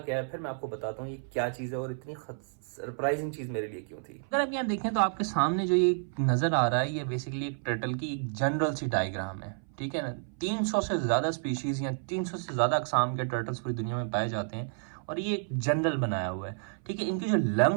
है, फिर मैं आपको बताता हूँ ये क्या चीज है और इतनी सरप्राइजिंग चीज मेरे लिए क्यों थी। अगर आप यहाँ देखें तो आपके सामने जो ये नजर आ रहा है ये बेसिकली एक टर्टल की एक जनरल सी डायग्राम है। ठीक है ना, 300 से ज्यादा स्पीशीज या 300 से ज्यादा अकसाम के टर्टल्स पूरी दुनिया में पाए जाते हैं और ये एक जनरल बनाया हुआ है। ठीक है, इनके जो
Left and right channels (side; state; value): left; silent; 57 dB below the other